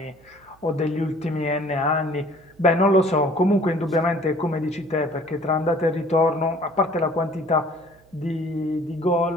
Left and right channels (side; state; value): right; noise; hum, 30 dB below the sound